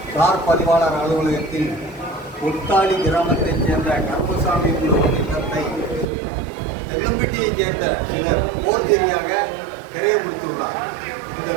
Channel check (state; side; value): drops out; left; at 6.1 s